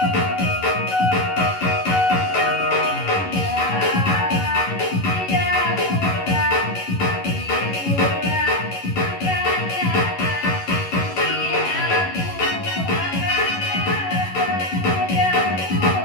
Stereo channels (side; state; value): right; late; 11 ms